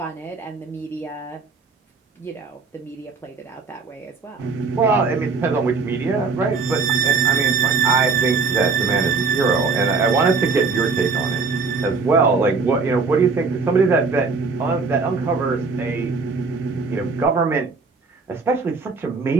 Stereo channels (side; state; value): left; quieter; 4.5 dB